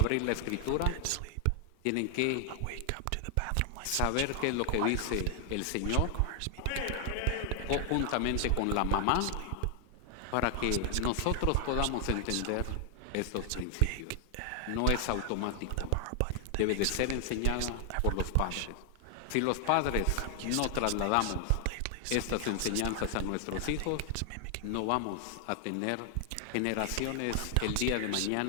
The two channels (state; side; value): different; both; correlation 0.00